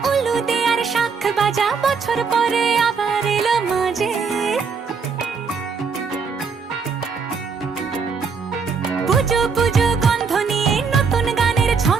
উলু দে আর শাখ বাজা, বছর পরে আবার এলো মাঝে। পুজো পুজো গন্ধ নিয়ে নতুন গানের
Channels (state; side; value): quieter; left; 5.4 dB